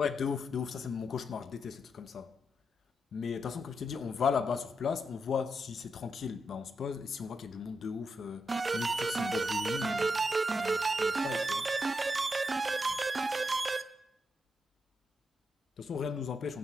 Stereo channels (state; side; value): normal; both; correlation 0.83